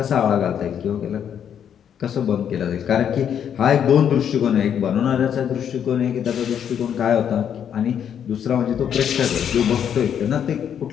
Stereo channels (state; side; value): quieter; right; 8.7 dB